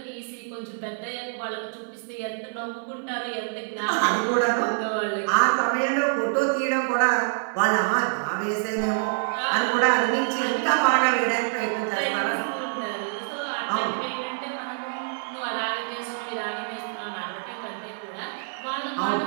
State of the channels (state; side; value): silent; left; 59 dB below the other